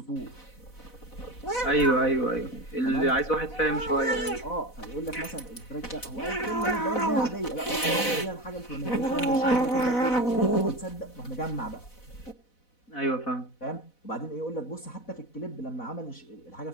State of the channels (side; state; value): right; late; 4.0 ms